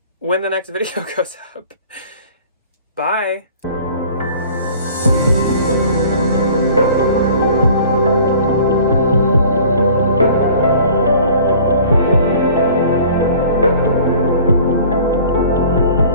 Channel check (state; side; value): inverted; both; correlation -0.49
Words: when the next video goes up. Bye!